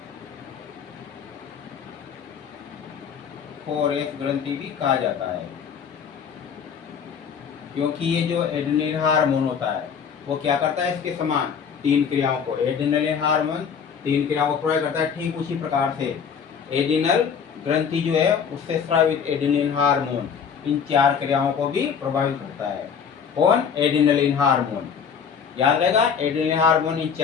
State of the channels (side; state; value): right; quieter; 6.9 dB